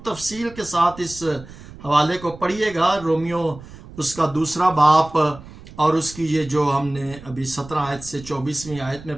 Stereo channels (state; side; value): noise; right; rumble, 18 dB below the sound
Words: تفصیل کے ساتھ اس حوالے کو پڑھیے گا, رومیو اس کا 2 باب اور اس کی یہ جو ہم نے ابھی 17 آیت سے 24ویں آیت میں